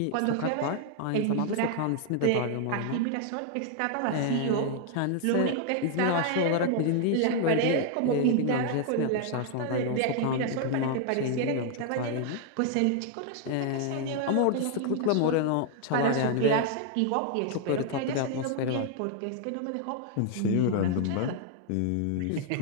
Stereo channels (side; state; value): both; different; correlation 0.00